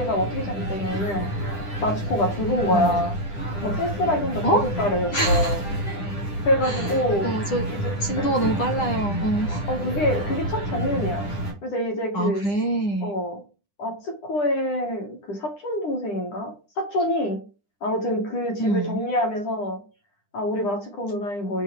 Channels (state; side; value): late; right; 10 ms